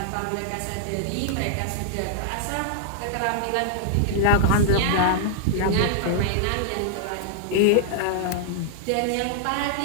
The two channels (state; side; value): different; both; correlation -0.01